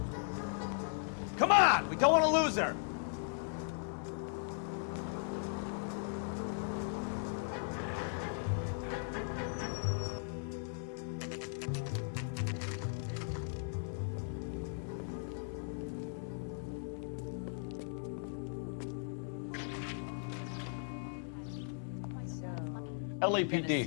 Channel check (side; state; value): right; silent; digital silence